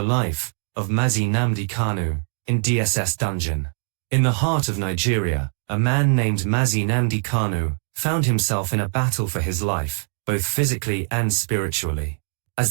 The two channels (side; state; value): left; silent; 59 dB below the other